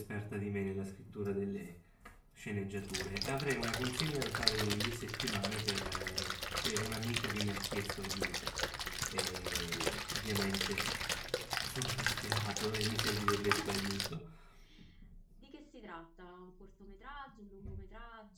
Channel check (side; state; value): both; identical; correlation 1.00